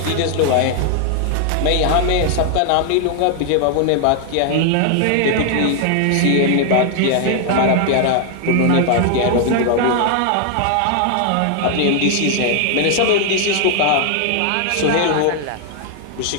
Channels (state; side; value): different; both; correlation 0.00